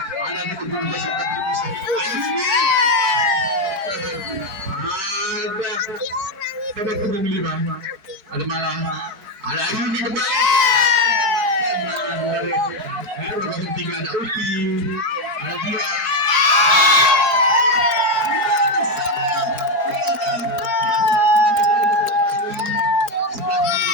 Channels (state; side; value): late; left; 4.5 ms